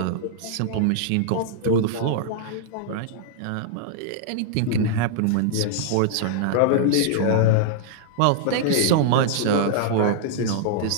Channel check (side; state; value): both; different; correlation -0.01